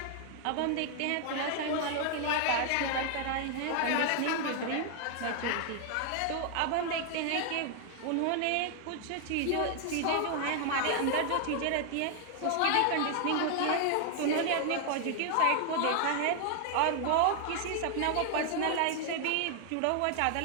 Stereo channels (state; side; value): different; both; correlation 0.00